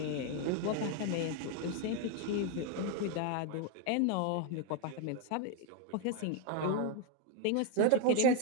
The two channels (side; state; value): both; different; correlation 0.01